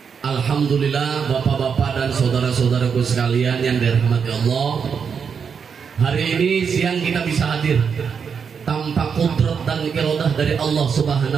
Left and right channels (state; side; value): quieter; left; 6.5 dB